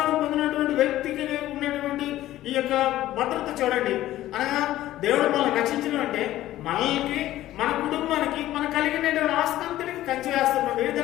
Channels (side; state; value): right; quieter; 14.5 dB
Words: పొందినటువంటి వ్యక్తికి ఉన్నటువంటి ఈ యొక్క భద్రత చూడండి. అనగా దేవుడు మనల్ని రక్షించడం అంటే మనకి, మన కుటుంబానికి, మన కలిగిన ఆస్తి అంతటికి కంచి వేస్తున్నాడు. ఈ